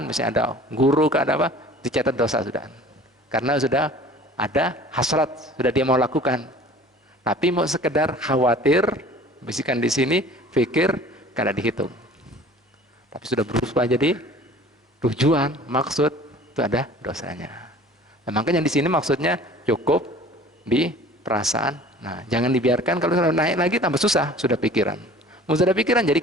misalnya ada guru, ada apa, dicatat dosa sudah. Karena sudah ada hasrat, sudah dia mau lakukan. Tapi mau sekedar khawatir, bisikan di sini, pikir, kada dihitung. Tapi sudah berubah jadi tujuan, maksud, itu ada dosanya. Nah, makanya di sini maksudnya cukup di perasaan. Nah, jangan dibiarkan, kalau sudah naik lagi tambah susah, sudah pikiran. Mau sudah pikiran jadi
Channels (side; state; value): both; normal; correlation 0.46